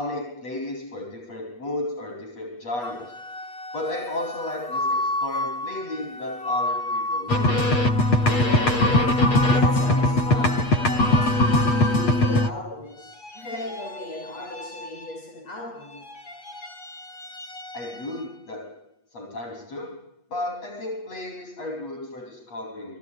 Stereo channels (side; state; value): right; late; 8.3 ms